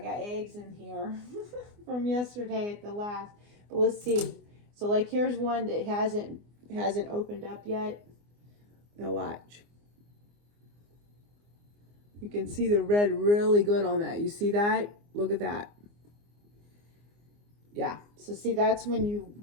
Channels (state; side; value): late; left; 24 ms